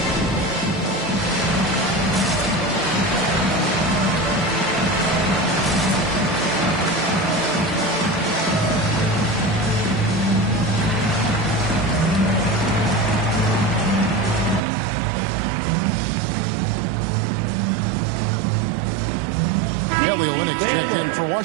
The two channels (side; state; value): left; drops out; at 14.6 s